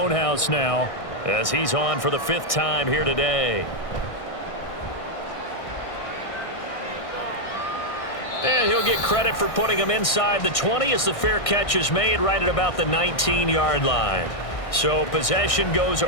now, as he's on for the 5th time here today. And he'll get credit for putting him inside the 20 as the fair catch is made right at about the 19-yard line. So possession goes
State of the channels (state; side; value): late; right; 1.6 ms